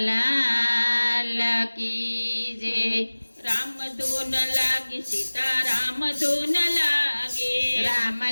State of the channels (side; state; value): both; inverted; correlation -1.00